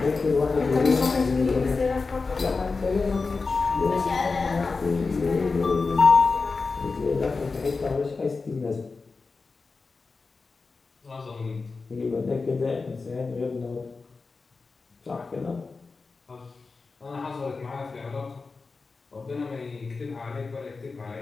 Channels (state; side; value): quieter; right; 4.2 dB